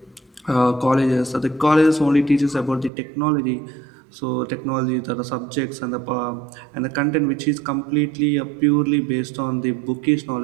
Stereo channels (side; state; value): left; drops out; at 2.9 s